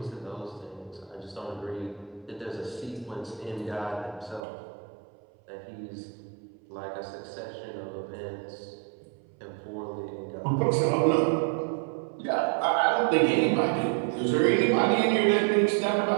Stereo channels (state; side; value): drops out; left; at 4.4 s